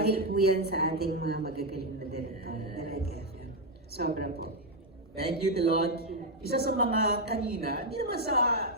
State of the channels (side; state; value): both; normal; correlation 0.03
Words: po yan sa ating mga magagaling na director. Talaga. Sobra po. Thank you, Tilot. Isa sa mga kanina, hindi naman sa,